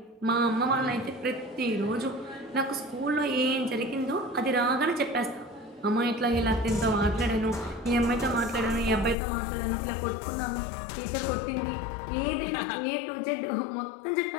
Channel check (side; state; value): right; drops out; at 9.2 s